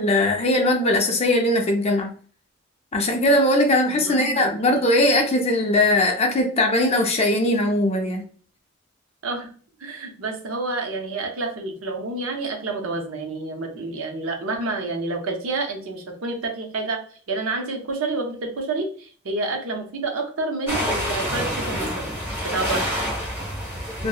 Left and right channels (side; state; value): both; normal; correlation 0.16